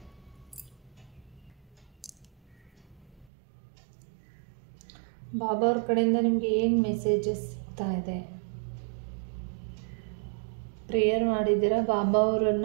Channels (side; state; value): left; drops out; at 3.2 s